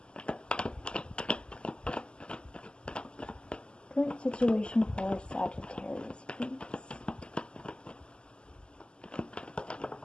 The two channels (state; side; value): late; right; 0.050 ms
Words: Current situation for Sagittarius, please.